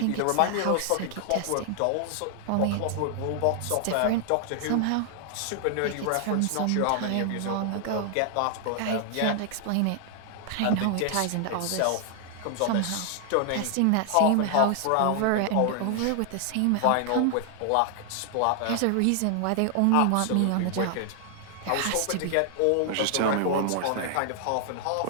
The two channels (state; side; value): different; both; correlation 0.00